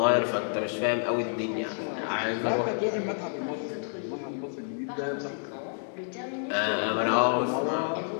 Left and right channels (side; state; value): right; silent; digital silence